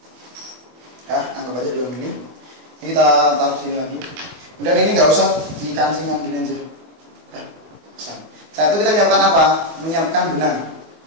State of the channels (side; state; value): left; late; 24 ms